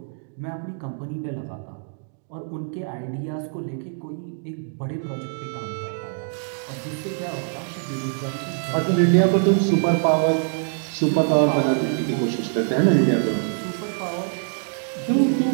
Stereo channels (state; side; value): silent; left; digital silence